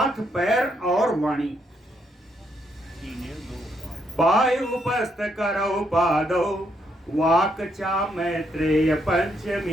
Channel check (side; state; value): both; normal; correlation 0.76